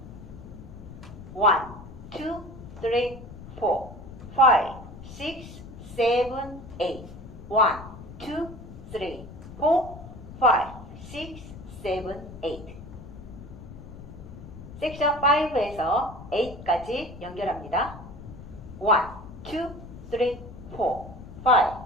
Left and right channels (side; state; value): left; noise; rumble, 14 dB below the sound